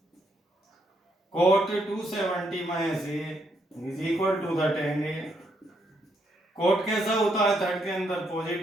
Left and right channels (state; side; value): normal; both; correlation 0.75